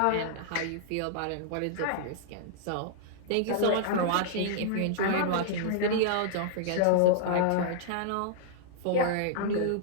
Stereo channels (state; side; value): different; both; correlation -0.01